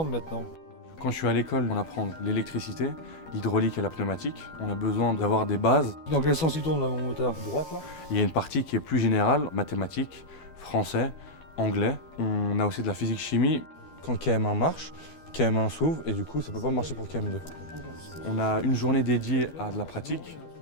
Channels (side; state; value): right; late; 12 ms